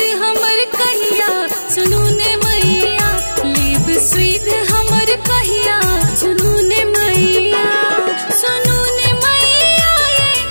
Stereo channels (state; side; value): inverted; both; correlation -1.00